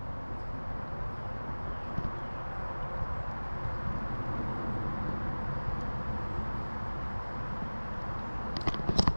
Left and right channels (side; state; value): both; inverted; correlation -1.00